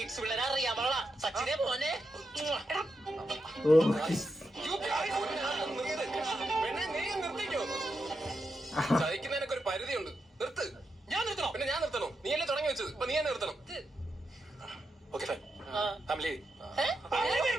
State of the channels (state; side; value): normal; both; correlation 0.86